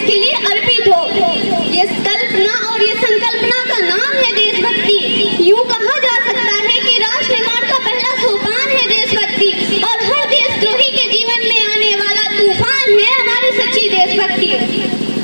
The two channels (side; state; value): both; inverted; correlation -1.00